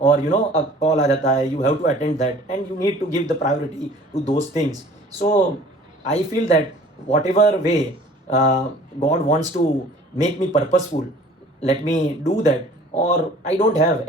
अ कॉल आ जाता है, you have to attend that and you need to give the priority to those things. So I feel that whatever way God wants to make me purposeful, let me do that, और I don't have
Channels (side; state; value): both; normal; correlation 0.49